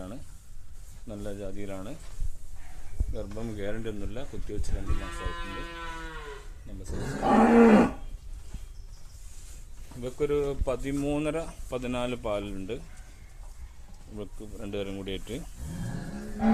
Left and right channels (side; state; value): both; identical; correlation 1.00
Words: നല്ല ജാതിയിലാണ്. ഗർഭം ഗ്യാരണ്ടി ഒന്നുമില്ല. കുത്തിവെച്ച് 2 മാസമായിട്ടുണ്ട്. ഇവക്കൊരു 13-14 പാലുണ്ട്. ഇവക്ക് 2 പേരും കൂടിയായിട്ട്